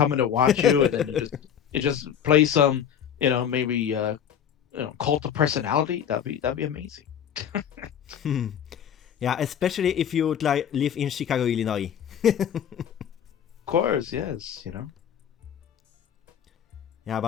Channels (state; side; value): quieter; right; 8.8 dB